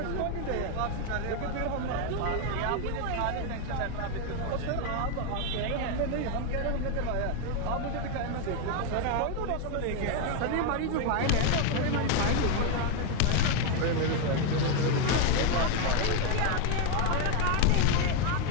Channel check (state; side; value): different; both; correlation 0.01